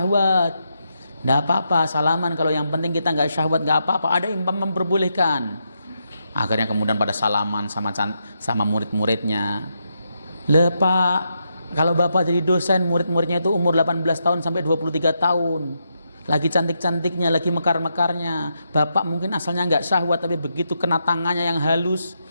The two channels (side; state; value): both; inverted; correlation -0.82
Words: enggak apa-apa salaman, kalau yang penting kita enggak syahwat, enggak apa-apa, ada yang memperbolehkan. Akhirnya kemudian pada salaman sama murid-muridnya. Lah Pak, kalau Bapak jadi dosen, murid-muridnya itu umur 18 tahun sampai 23 tahun. Lagi cantik-cantiknya, lagi mekar-mekarnya. Bapak mungkin asalnya nggak syahwat, tapi begitu kena tangannya yang halus,